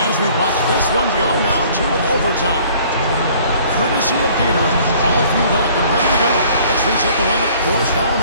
As we watch this one go now to overtime. Courtesy of Gatorade, all fueled up and ready to go. Let's reset the lineup for us now in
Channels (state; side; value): inverted; both; correlation -0.55